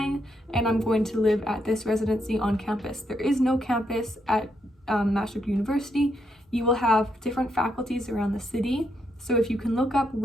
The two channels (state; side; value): normal; both; correlation 0.79